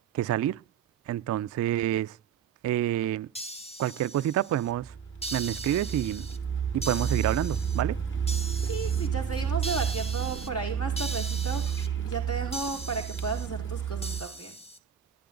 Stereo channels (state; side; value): quieter; left; 8.1 dB